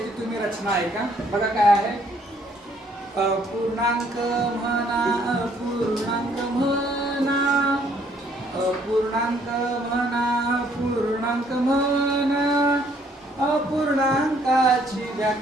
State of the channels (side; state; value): both; normal; correlation 0.65